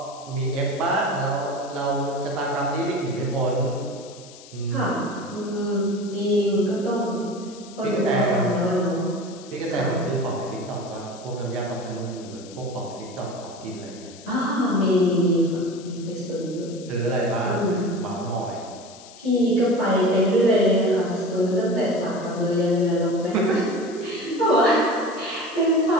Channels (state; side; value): noise; left; hiss, 20 dB below the sound